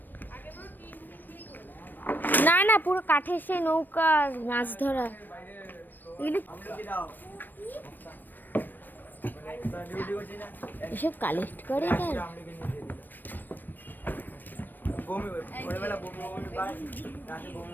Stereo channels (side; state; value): right; late; 0.091 ms